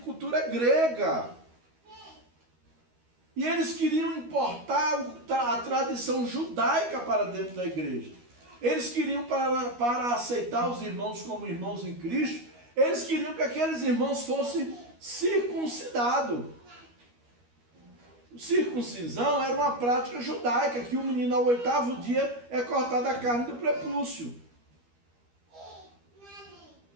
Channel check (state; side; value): late; left; 12 ms